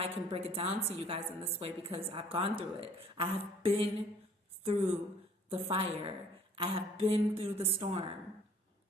I can break it down to you guys in this way, because I've gone through it. I have been through the fire. I have been through the storm.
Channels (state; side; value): normal; both; correlation 0.55